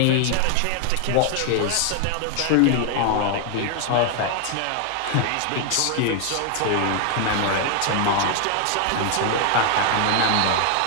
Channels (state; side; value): different; both; correlation 0.00